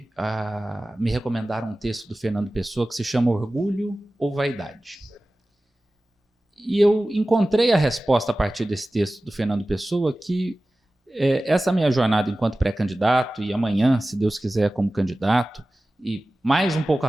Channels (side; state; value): both; normal; correlation 0.96